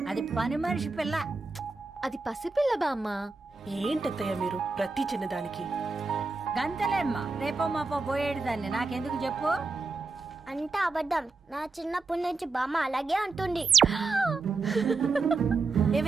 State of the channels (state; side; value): quieter; left; 3.9 dB